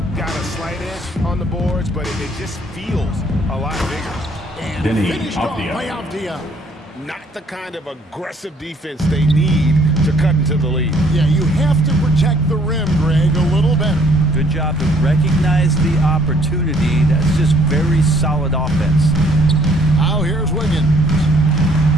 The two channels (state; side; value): normal; both; correlation 0.62